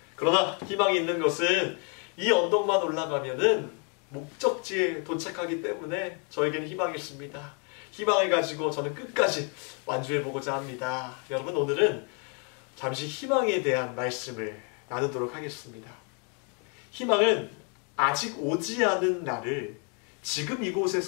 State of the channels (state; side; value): quieter; right; 37.3 dB